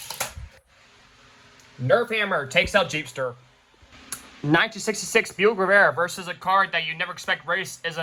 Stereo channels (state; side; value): identical; both; correlation 1.00